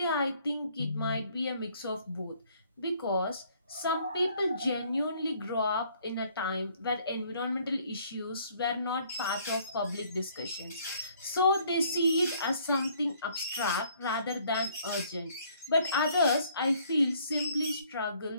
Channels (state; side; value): inverted; both; correlation -0.62